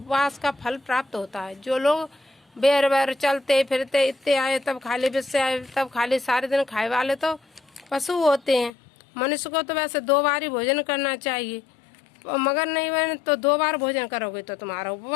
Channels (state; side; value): drops out; right; at 8.7 s